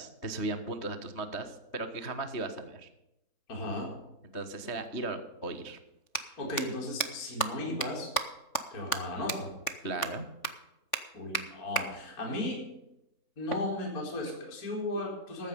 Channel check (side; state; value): right; late; 3.5 ms